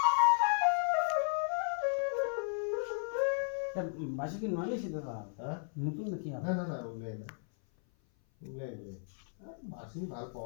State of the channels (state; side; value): silent; right; 55 dB below the other